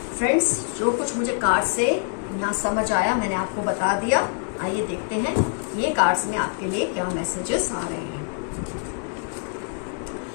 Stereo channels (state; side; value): quieter; right; 39.2 dB